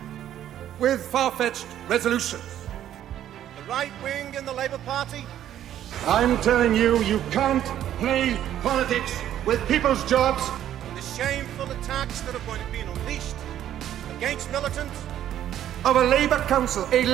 with far-fetched resolutions. The right wing in the Labour Party. I'm telling you, you can't play politics with people's jobs. The shameful attacks that are going to be unleashed against militants. Of a Labour Council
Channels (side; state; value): left; quieter; 11.3 dB